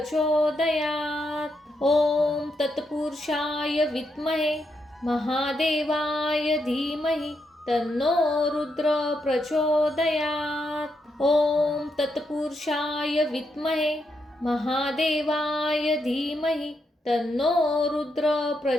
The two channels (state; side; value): normal; both; correlation 0.81